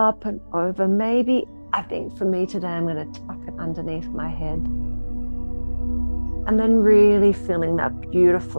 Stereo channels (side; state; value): both; inverted; correlation -1.00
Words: and over. Maybe, I think for me today, I'm going to tuck it underneath my head. And then really feeling that